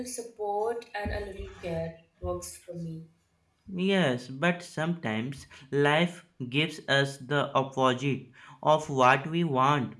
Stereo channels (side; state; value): both; identical; correlation 1.00